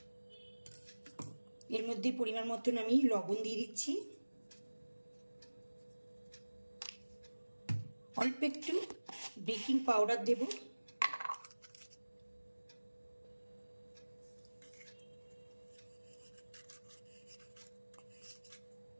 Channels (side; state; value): both; inverted; correlation -1.00